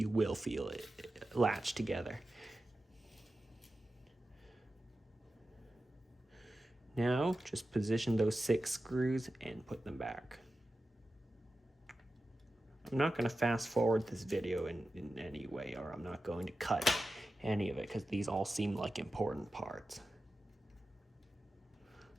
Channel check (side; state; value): both; normal; correlation 0.93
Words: will feel it latch together. Now, just position those 6 screws and put them back. I'm not going to fast forward this video in any way, or I'm not going to cut any of it, because these all seem like important parts.